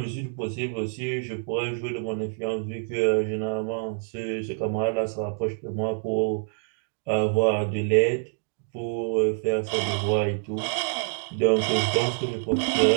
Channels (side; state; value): left; silent; digital silence